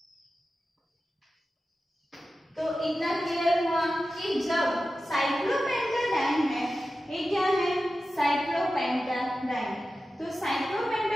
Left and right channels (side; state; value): both; normal; correlation 0.93